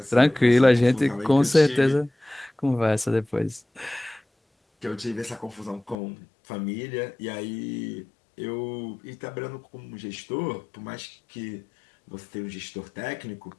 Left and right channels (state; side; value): drops out; right; at 6.0 s